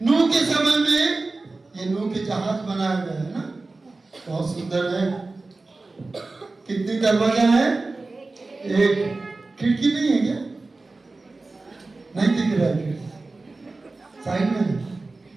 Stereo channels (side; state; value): left; quieter; 3.4 dB